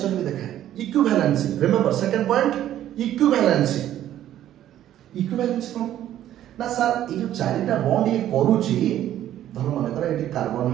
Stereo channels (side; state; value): left; quieter; 12.1 dB